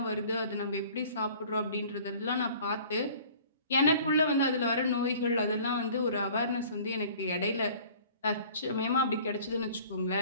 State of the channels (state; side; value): inverted; both; correlation -0.49